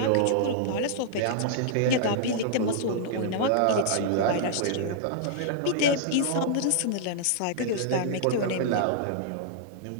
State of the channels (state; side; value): different; both; correlation -0.01